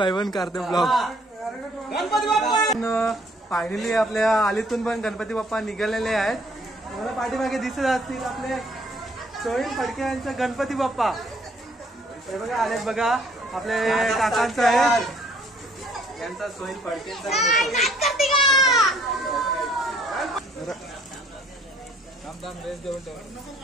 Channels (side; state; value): both; normal; correlation 0.62